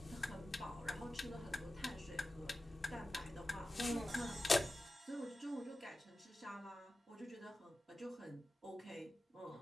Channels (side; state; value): both; normal; correlation 0.94